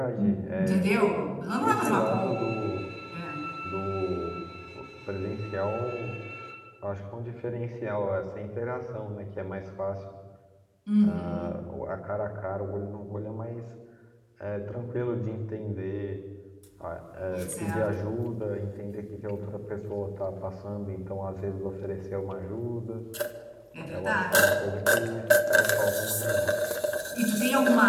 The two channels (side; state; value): both; identical; correlation 1.00